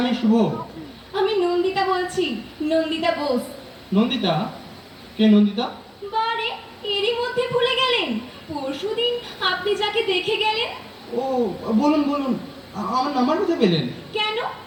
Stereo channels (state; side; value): identical; both; correlation 1.00